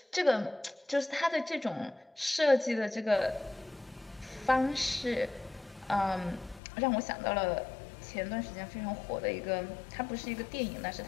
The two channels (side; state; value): right; drops out; at 6.6 s